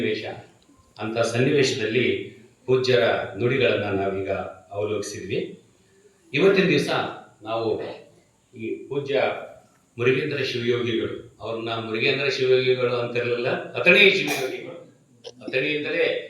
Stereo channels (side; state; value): both; identical; correlation 1.00